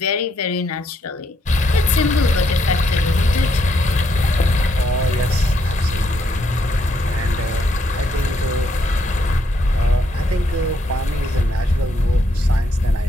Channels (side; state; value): both; normal; correlation 0.75